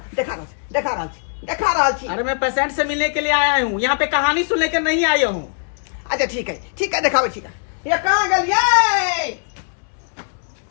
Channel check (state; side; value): silent; right; digital silence